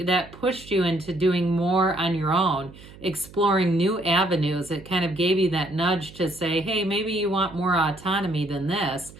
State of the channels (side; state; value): right; noise; hum, 20 dB below the sound